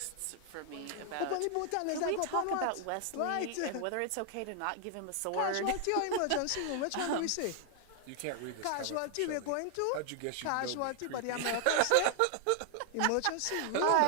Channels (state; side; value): different; both; correlation 0.00